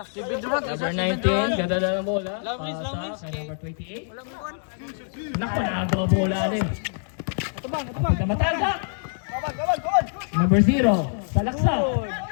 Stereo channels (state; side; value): silent; right; digital silence